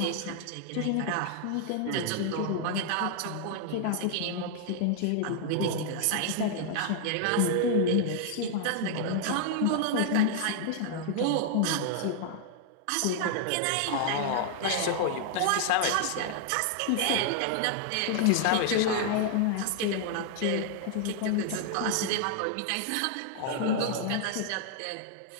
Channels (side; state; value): both; different; correlation 0.00